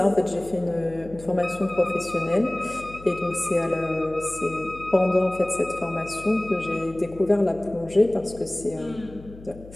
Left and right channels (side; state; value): left; noise; hum, 18 dB below the sound